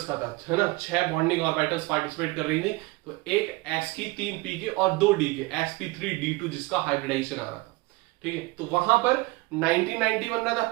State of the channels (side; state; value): left; quieter; 23.3 dB